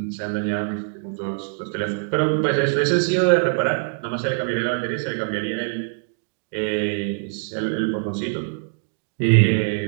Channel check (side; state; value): left; silent; 63 dB below the other